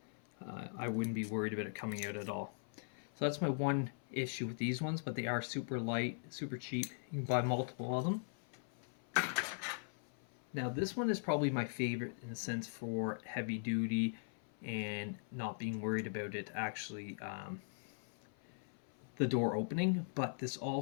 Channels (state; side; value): silent; right; 51 dB below the other